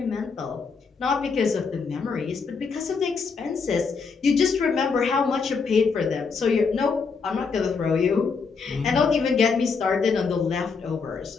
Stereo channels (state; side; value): quieter; right; 5.1 dB